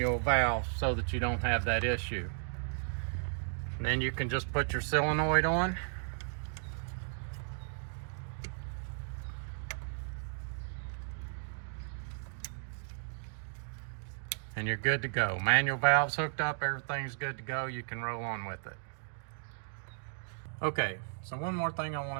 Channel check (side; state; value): left; silent; digital silence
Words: valve so that you don't have that issue. And then you can just put your solenoid on. And you're good to go. Manual valve's hooked up, everything's good to go. You can roll on with it. Okay, so one more thing I